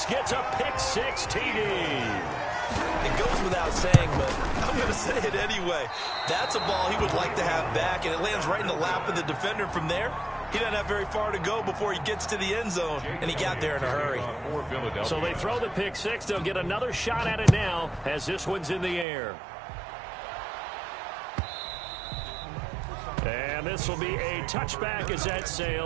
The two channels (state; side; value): drops out; left; at 19.1 s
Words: gets a pick-6 TD. It goes without saying, but I'm going to say it anyway. That's a ball he would like to have back, and it lands right in the lap of the defender from there. He doesn't have very far to go before he gets to the end zone, and he got there in a hurry. So they throw the pick-6. They'll get another shot at it now as this one's in the air. And this will be a touchback as that